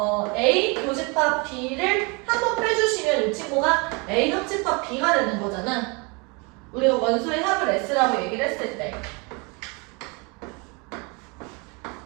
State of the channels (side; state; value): left; quieter; 30.3 dB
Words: A 교집합 B를 한번 빼주시면 이 친구가 A 합집합 B가 되는 거잖아. 우리가 원소의 합을 S라고 얘기를 했을 때.